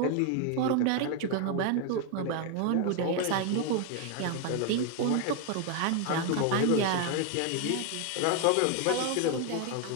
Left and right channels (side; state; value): both; different; correlation 0.01